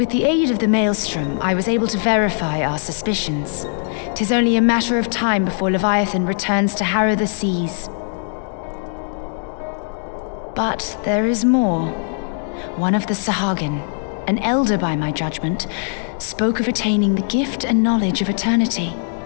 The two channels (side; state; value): right; silent; 62 dB below the other